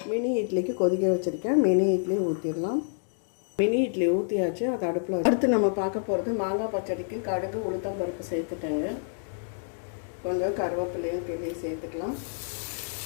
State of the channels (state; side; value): silent; right; digital silence